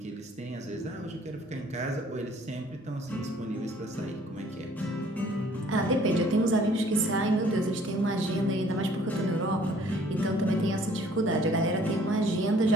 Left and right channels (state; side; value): normal; both; correlation 0.58